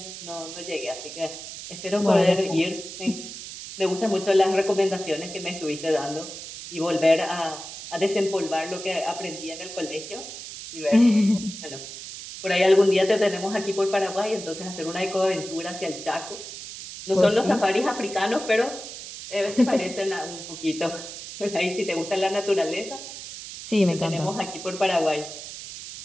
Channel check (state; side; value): noise; right; hiss, 11 dB below the sound